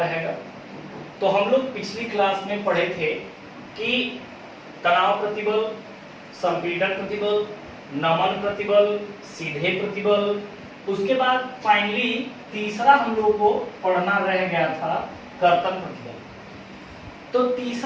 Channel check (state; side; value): identical; both; correlation 1.00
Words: तो हम लोग पिछली क्लास में पढ़े थे कि तनाव प्रतिबल, संपीड़न प्रतिबल, नमन प्रतिबल, सीधे प्रतिबल, उसके बाद फाइनली तीसरा हम लोग को पढ़ना रह गया था कर्तन प्रतिबल। तो